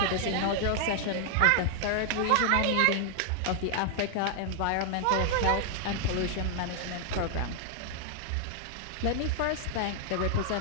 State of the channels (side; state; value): both; different; correlation -0.01